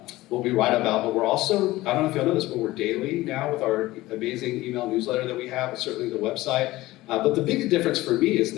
what we write about, but we're also, I don't know if y'all know this, but we're daily now with our amazing email newsletter that we have, and certainly the website. But the big difference for me is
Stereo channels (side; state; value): right; quieter; 18.0 dB